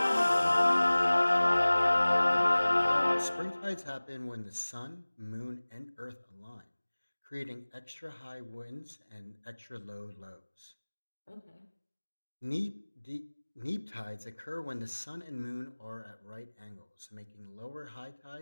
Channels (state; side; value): inverted; both; correlation -1.00